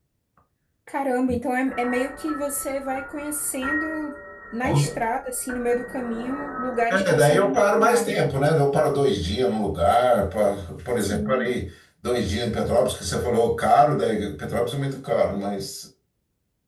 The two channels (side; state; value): both; identical; correlation 1.00